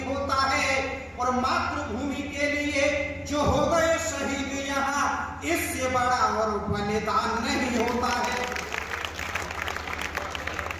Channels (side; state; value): both; identical; correlation 1.00